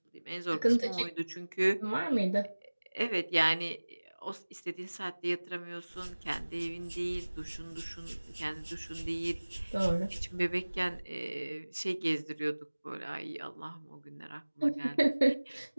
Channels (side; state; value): both; inverted; correlation -1.00